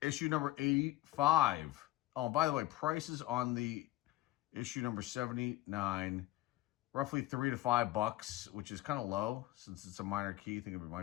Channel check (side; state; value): right; quieter; 17.1 dB